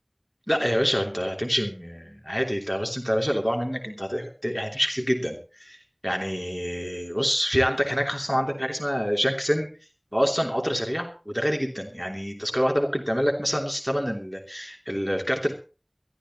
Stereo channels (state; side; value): identical; both; correlation 1.00